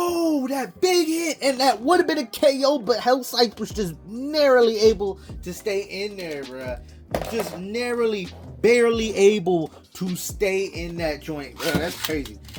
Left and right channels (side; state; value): both; identical; correlation 1.00